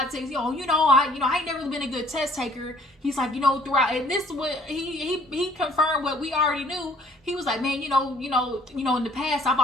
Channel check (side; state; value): both; normal; correlation 0.58